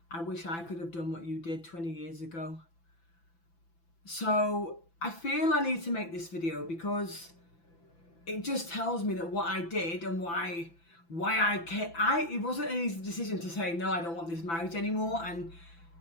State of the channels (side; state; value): right; late; 6.0 ms